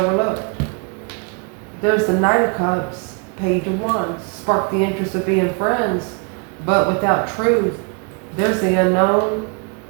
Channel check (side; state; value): left; quieter; 33.7 dB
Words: There's the Knight of Cups, Page of Wands. Spark the interest of being friends, but without truth. There's the unknown.